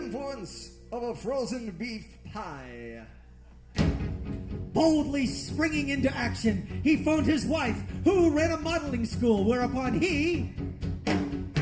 of a frozen beef pie. Boldly springing into action, he phoned his wife, who ran a modeling school, whereupon he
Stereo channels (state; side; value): identical; both; correlation 1.00